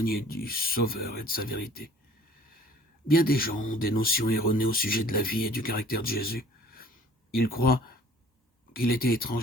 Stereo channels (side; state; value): both; normal; correlation 0.52